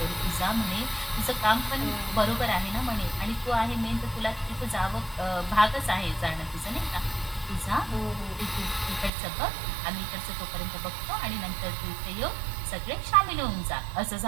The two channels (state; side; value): drops out; left; at 9.1 s